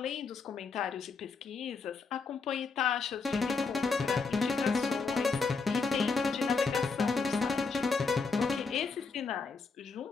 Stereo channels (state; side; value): quieter; right; 4.7 dB